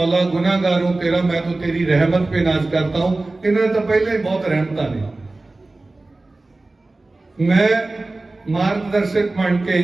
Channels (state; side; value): quieter; left; 3.1 dB